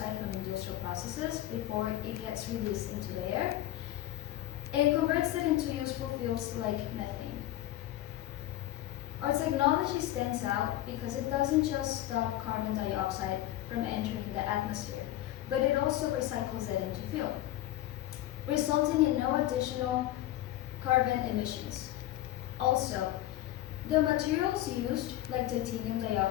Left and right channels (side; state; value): right; quieter; 14.6 dB